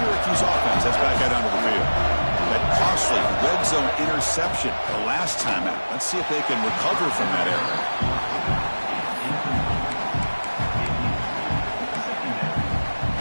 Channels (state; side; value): inverted; both; correlation -1.00